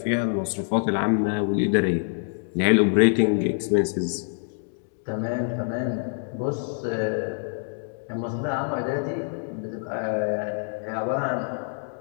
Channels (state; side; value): silent; right; 60 dB below the other